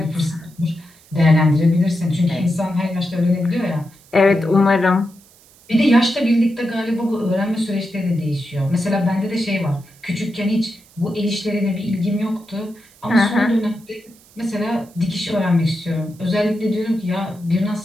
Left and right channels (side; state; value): right; noise; hiss, 27 dB below the sound